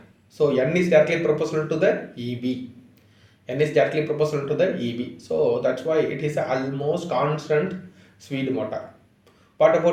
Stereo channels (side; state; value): both; identical; correlation 1.00